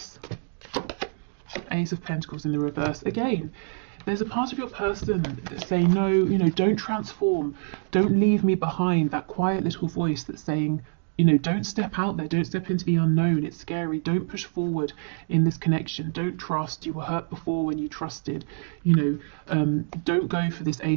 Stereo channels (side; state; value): left; silent; digital silence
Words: Ace of Pentacles in the reverse. Again, there's a part of your person that's saying, no, you know, don't transform. Don't leave me behind. That quiet little voice that's saying, you know, don't step out there. Don't step into the unknown. It's scary. Don't push forward in this connection. Don't trust. You were hurt before when you trusted. You know, don't go for this